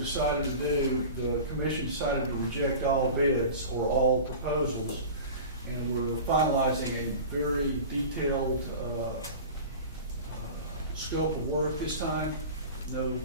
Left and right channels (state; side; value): inverted; both; correlation -0.35